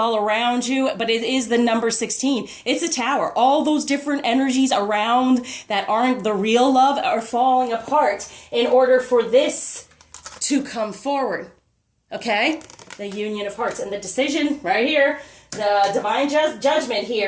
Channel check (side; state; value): both; identical; correlation 1.00